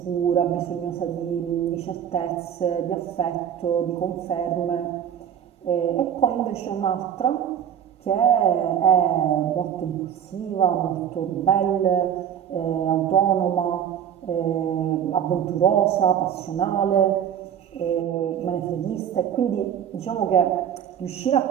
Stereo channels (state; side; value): quieter; left; 9.2 dB